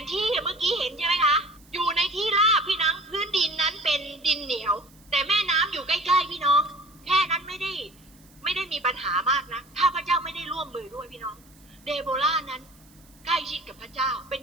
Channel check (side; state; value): right; noise; hiss, 28 dB below the sound